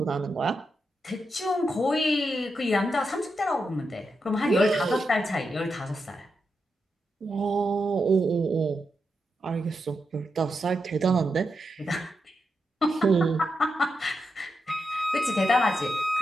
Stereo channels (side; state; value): both; normal; correlation 0.86